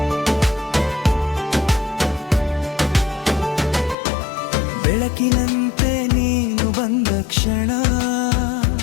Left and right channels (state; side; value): drops out; right; at 4.0 s